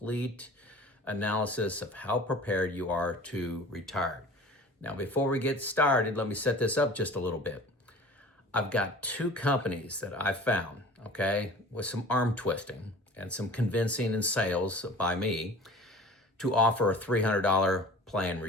analysis of how prepared you are to retire. Now, before we get started, let me set this up just a little bit. I've got two companies that I found, okay, with some arm twisting and some convincing and sales by me to offer a $300 plan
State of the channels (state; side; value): normal; both; correlation 0.42